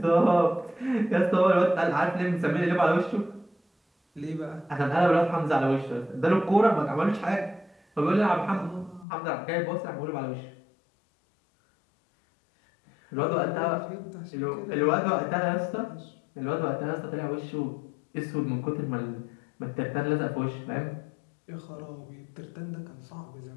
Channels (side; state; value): right; drops out; at 9.1 s